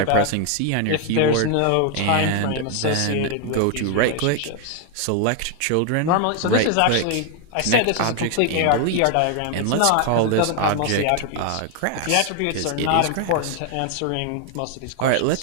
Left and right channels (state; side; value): different; both; correlation 0.00